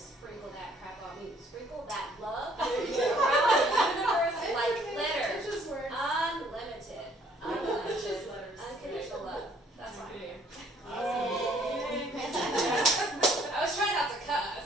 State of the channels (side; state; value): both; normal; correlation 0.61